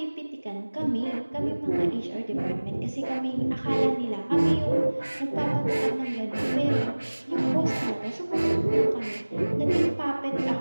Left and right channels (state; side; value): inverted; both; correlation -1.00